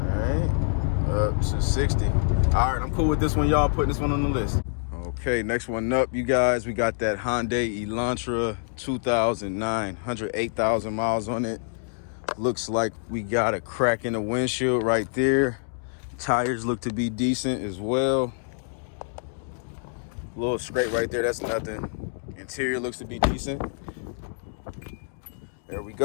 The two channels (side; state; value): right; silent; digital silence